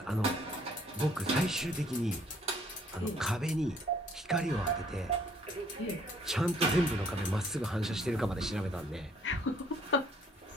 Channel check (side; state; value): both; normal; correlation 0.62